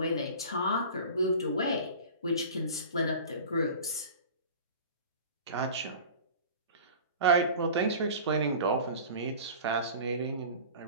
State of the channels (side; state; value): both; inverted; correlation -0.39